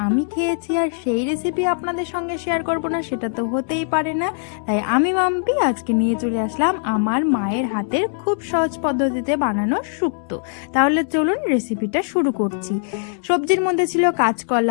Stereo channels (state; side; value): silent; right; digital silence